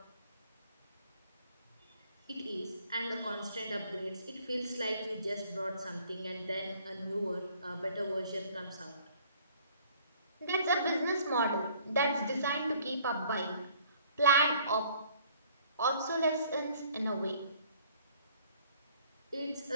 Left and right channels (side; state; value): both; inverted; correlation -0.58